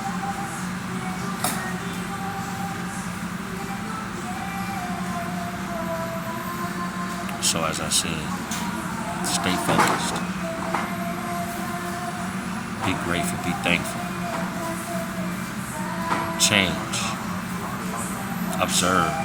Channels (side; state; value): both; identical; correlation 1.00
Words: So as I said, stay focused. Be grateful, be thankful. Change. Observe.